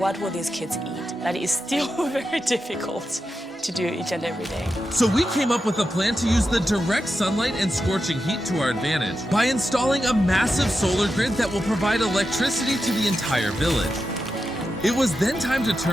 will these kids eat? That is still very difficult to do each and every day. So we came up with a plan to use the direct sunlight and scorching heat to our advantage by installing a massive solar grid that will provide electricity to the entire village. It was then time to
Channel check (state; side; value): normal; both; correlation 0.89